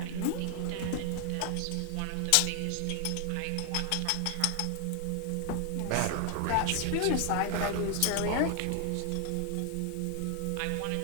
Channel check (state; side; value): different; both; correlation 0.00